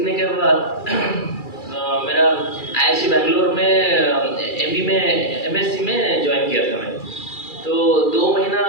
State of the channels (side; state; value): right; late; 2.3 ms